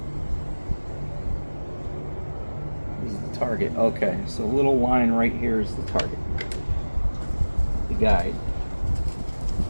is the target? Okay, so a little line right here is the target, the guide.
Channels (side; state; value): both; inverted; correlation -1.00